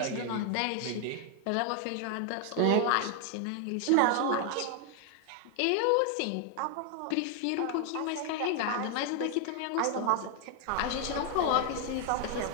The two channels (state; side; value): different; both; correlation 0.00